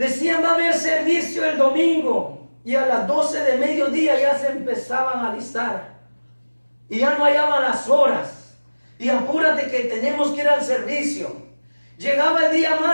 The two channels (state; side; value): inverted; both; correlation -1.00